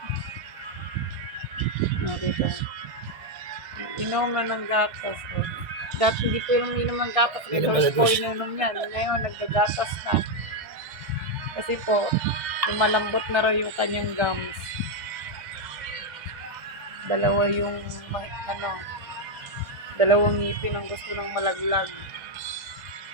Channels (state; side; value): late; left; 1.6 ms